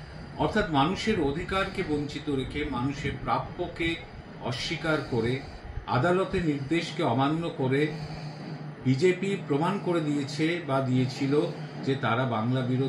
অর্থাৎ মানুষের অধিকারকে বঞ্চিত রেখে, মানুষের প্রাপ্যকে অস্বীকার করে, আদালতের নির্দেশকে অমান্য করে বিজেপি প্রমাণ করে দিয়েছে বা দিয়েছিল যে তারা বাংলা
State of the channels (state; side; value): identical; both; correlation 1.00